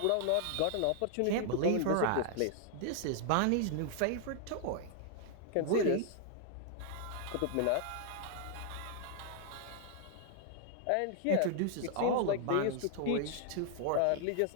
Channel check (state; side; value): different; both; correlation 0.00